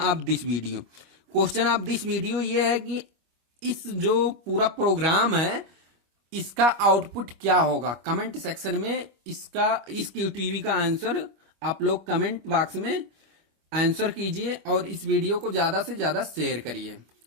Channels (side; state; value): left; late; 25 ms